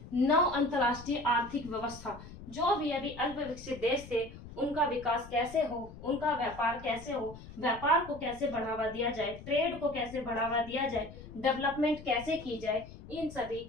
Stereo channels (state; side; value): noise; left; rumble, 16 dB below the sound